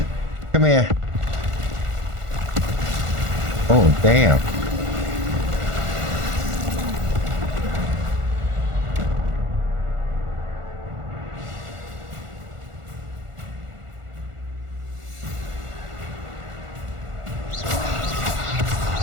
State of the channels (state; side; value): late; left; 1.5 ms